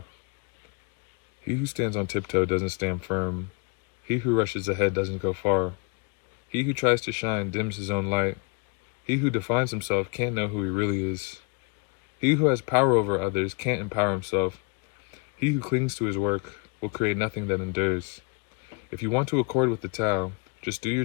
He who stands on tiptoe doesn't stand firm. He who rushes ahead doesn't go far. He who tries to shine dims his own light. He who defines himself can't know who he really is. He who has power over others can't empower himself. He who clings to his work will create nothing that endures. If you want to accord with the Tao, just do your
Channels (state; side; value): quieter; right; 33.5 dB